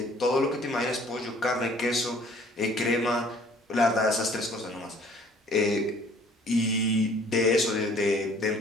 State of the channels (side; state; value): both; normal; correlation 0.55